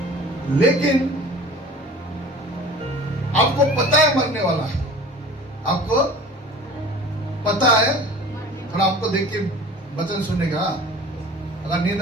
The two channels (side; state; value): both; normal; correlation 0.42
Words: लेकिन आपको पता है मरने वाला है, आपको पता है। थोड़ा आपको देख के वचन सुनेगा। अगर